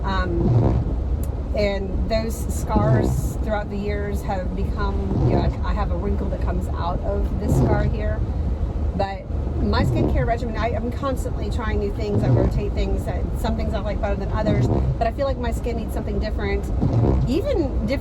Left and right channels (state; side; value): identical; both; correlation 1.00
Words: And those scars throughout the years have become, you know, I have a wrinkle that comes out of this scar here. But my skincare regimen, I'm constantly trying new things. I rotate things. Some things I like better than others. But I feel like my skin needs something different, even